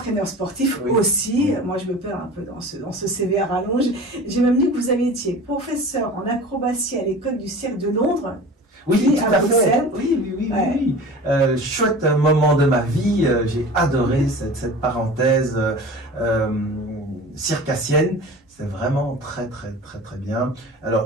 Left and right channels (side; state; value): both; normal; correlation 0.38